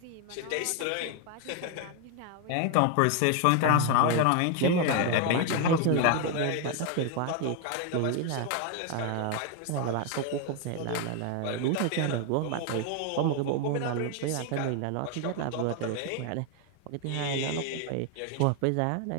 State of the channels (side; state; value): both; different; correlation 0.01